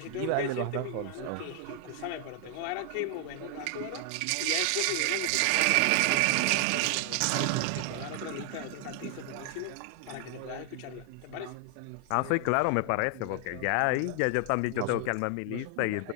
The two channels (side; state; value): both; different; correlation 0.00